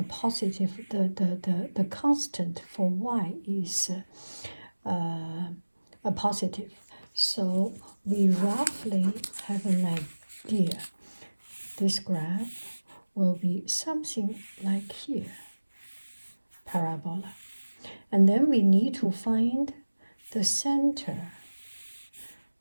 positive, the constant for y is a positive. So we roughly have an idea. This graph will be something like here, parabola. And then we need to find the center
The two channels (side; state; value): both; inverted; correlation -1.00